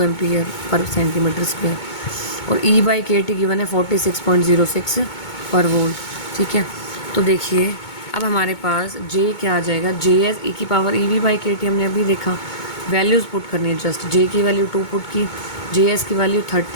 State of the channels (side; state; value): right; late; 2.2 ms